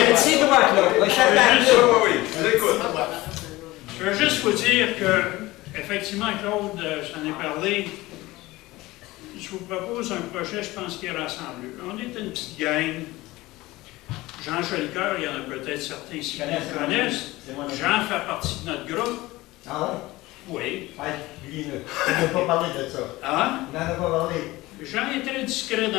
petit doigt, Claude. Je veux juste vous dire que, effectivement, Claude, j'en ai parlé. Je vous propose un projet, je pense, qui est rassembleux. On est une petite gang. Jean Jolicoeur, il y en a peut-être certains ici qui le connaissent. Jean fait partie de notre groupe. Ah Oui. ouais? Dis-le. On n'a pas parlé de ça. Ah? On n'en a pas parlé. Jean est très discret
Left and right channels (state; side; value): quieter; right; 19.3 dB